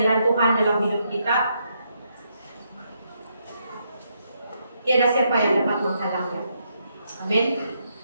Tuhan dalam hidup kita, tiada siapa yang dapat menghalangnya. Amin.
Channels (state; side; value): inverted; both; correlation -0.78